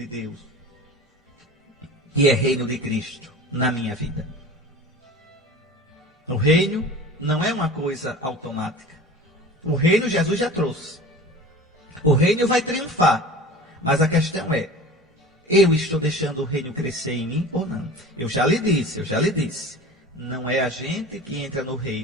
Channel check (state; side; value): normal; both; correlation 0.37